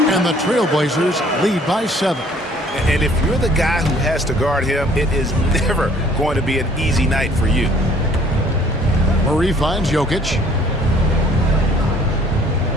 And the Trailblazers lead by 7. And if you're the guy who has to guard him, it is never going to be an easy night for you. Murray finds Jokic.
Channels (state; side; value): normal; both; correlation 0.58